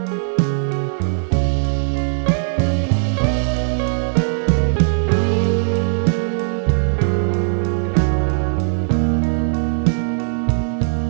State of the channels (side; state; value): left; silent; digital silence